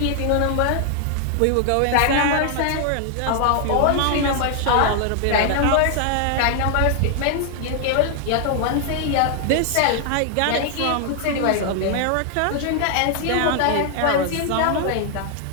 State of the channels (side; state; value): both; different; correlation 0.00